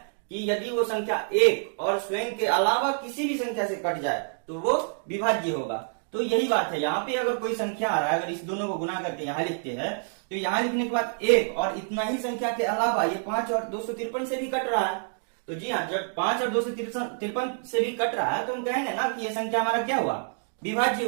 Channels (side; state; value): left; silent; digital silence